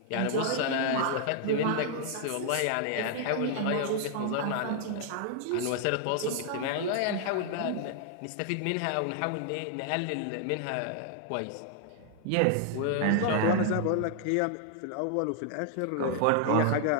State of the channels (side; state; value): both; different; correlation 0.00